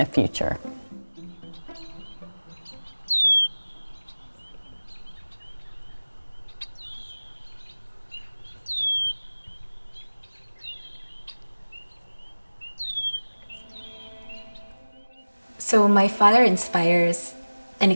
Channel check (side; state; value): both; inverted; correlation -1.00